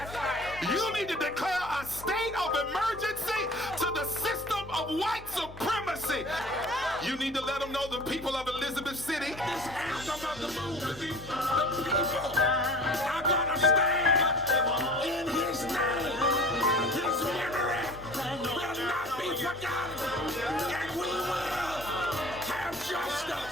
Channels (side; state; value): both; normal; correlation 0.44